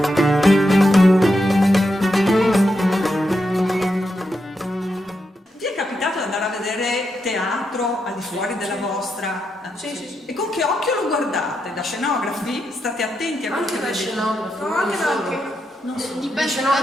Vi è capitato di andare a vedere teatro al di fuori della vostra? Sì. E con che occhio lo guardate? Da scenografi? State attenti a quello che Anche da vedete? scenografi, No, anche da non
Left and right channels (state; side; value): normal; both; correlation 0.84